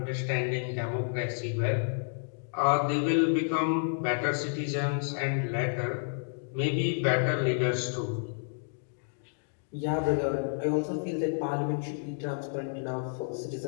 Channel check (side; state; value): right; silent; digital silence